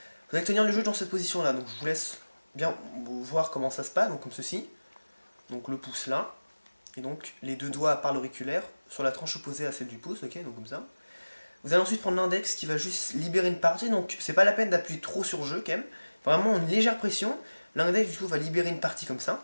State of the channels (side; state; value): both; inverted; correlation -1.00